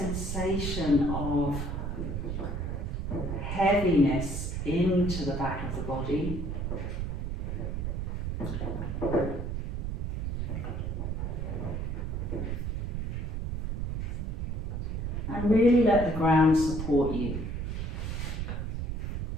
of heaviness into the back of the body. And really let the ground support you.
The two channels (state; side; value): noise; right; rumble, 2 dB below the sound